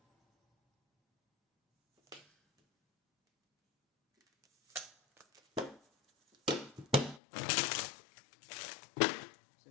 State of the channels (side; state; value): right; drops out; at 7.2 s